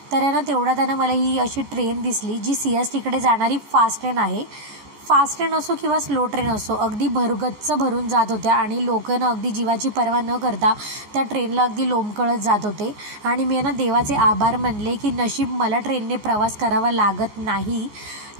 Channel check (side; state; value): left; late; 14 ms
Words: तर ना तेवढ्यात मला ही अशी ट्रेन दिसली, जी CSTकडे जाणारी फास्ट ट्रेन आहे. फास्ट ट्रेन असो किंवा स्लो ट्रेन असो, अगदी गच्च भरून जात होत्या आणि लोकांना अगदी जीवाची पर्वा न करता त्या ट्रेनला अगदी लोंबकळत जात होते. आणि मी देवाचे आभार मानले की नशीब मला ट्रेनने प्रवास करावा लागत नाही.